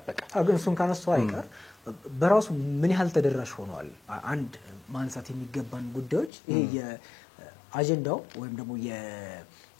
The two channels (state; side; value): drops out; right; at 6.3 s